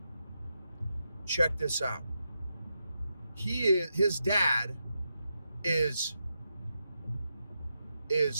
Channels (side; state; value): both; inverted; correlation -0.86